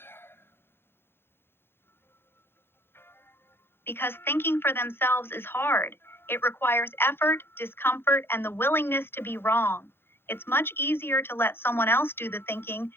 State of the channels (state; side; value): late; right; 0.11 ms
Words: Because thinking for themselves is hard. It requires effort, discomfort, and the willingness to be wrong. It's much easier to let someone else do the thinking